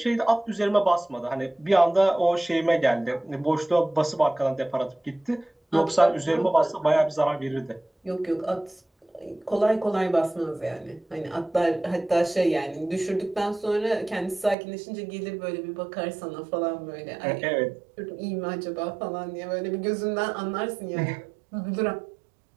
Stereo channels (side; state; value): left; drops out; at 14.6 s